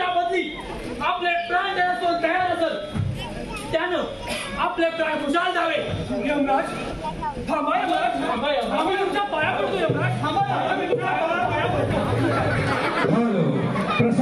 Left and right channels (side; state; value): both; identical; correlation 1.00